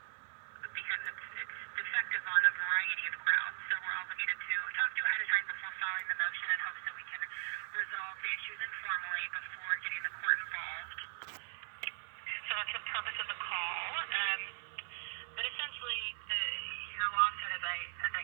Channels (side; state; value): left; silent; 52 dB below the other